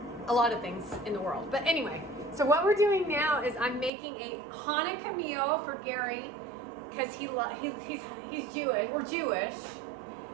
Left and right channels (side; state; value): left; drops out; at 3.9 s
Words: a lot of things in the world. But anyway, so what we're doing now is I'm making a Hanukkah meal for Gary because he's Jewish. We're Jewish,